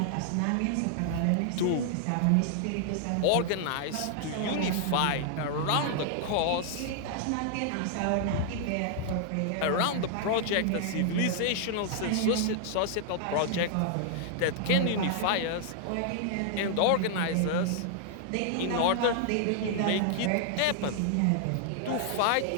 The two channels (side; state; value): both; different; correlation 0.00